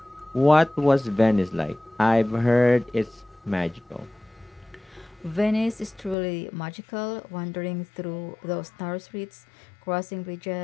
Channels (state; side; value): drops out; right; at 6.2 s